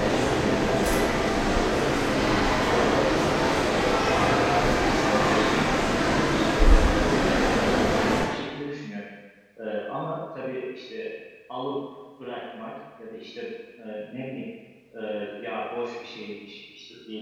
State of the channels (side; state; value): both; identical; correlation 1.00